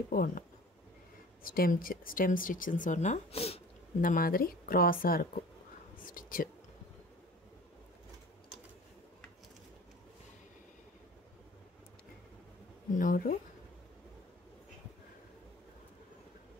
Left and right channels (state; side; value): normal; both; correlation 0.43